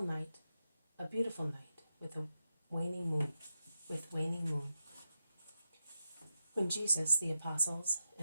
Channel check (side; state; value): both; inverted; correlation -0.89